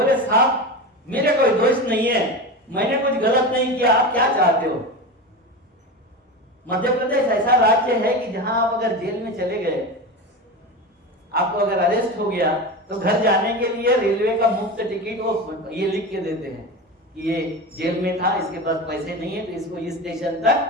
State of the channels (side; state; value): both; normal; correlation 0.24